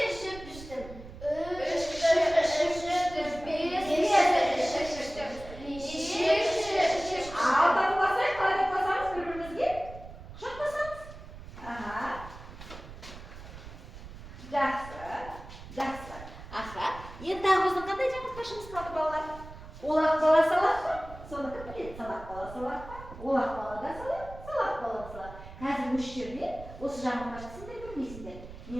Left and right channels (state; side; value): noise; right; rumble, 15 dB below the sound